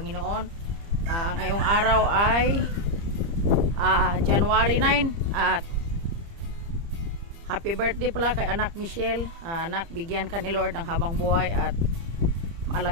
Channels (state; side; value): late; left; 30 ms